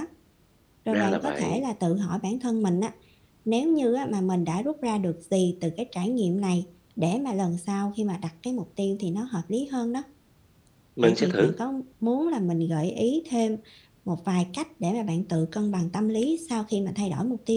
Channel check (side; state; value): both; identical; correlation 1.00